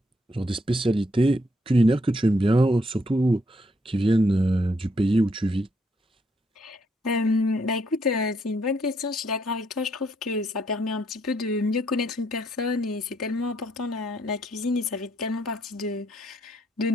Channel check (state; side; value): normal; both; correlation 0.73